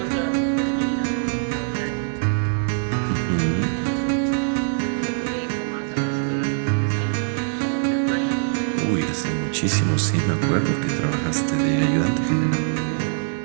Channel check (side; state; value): left; silent; digital silence